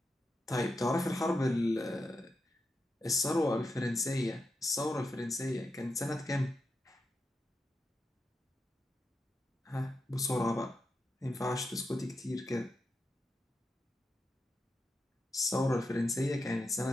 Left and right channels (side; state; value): both; normal; correlation 0.86